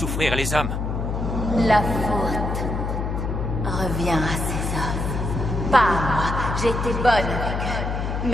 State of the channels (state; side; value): noise; left; hum, 2 dB below the sound